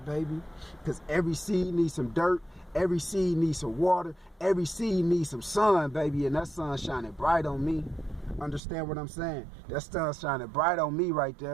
baby. Because every seed needs some dirt. Every seed needs some water. Every seed needs some sun, baby. And that sun shining bright on me. Understand what I'm saying? That sun shining bright on me right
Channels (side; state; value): left; drops out; at 8.6 s